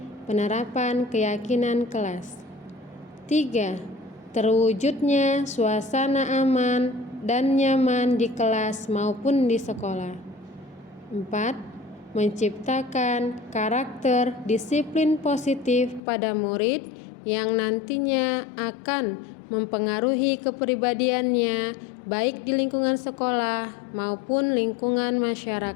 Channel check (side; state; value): right; drops out; at 16.0 s